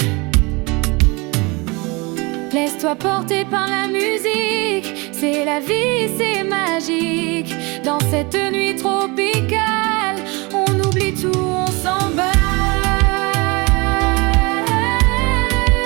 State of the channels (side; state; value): left; quieter; 26.4 dB